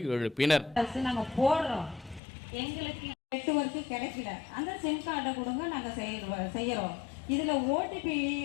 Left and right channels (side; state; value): right; drops out; at 2.2 s